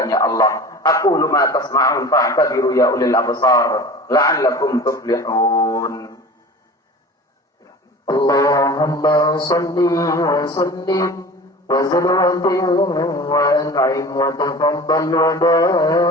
Allah. Aqulu ma tasma'un fa'tabiru ya ulil absar la'allakum tuflihun. Allahumma salli wa sallim wa zid wa an'im wa tafaddal wa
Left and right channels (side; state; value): both; normal; correlation 0.38